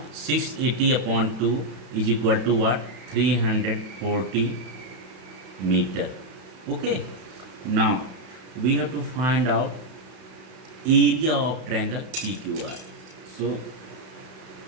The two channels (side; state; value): left; late; 31 ms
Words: 680 upon 2 is equal to what? 340 meter. Okay. Now we have to find out area of triangle PQR. So